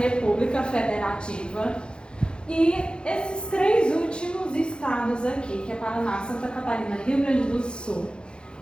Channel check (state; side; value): late; right; 0.051 ms